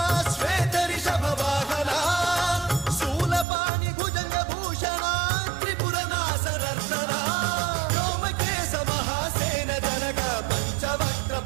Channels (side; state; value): left; drops out; at 3.5 s